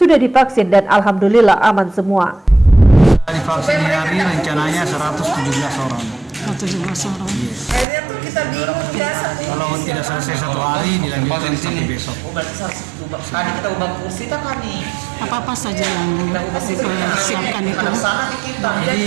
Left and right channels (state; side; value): drops out; left; at 7.9 s